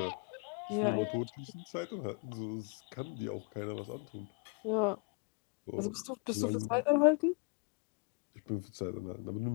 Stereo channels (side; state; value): right; quieter; 32.8 dB